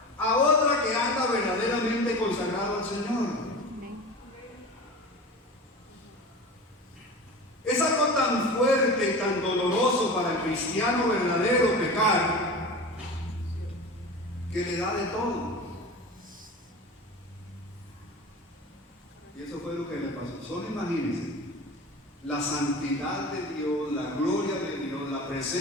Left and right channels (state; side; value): normal; both; correlation 0.32